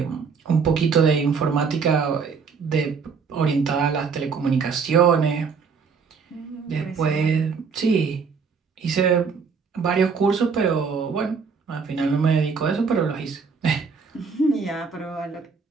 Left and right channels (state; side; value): quieter; left; 5.5 dB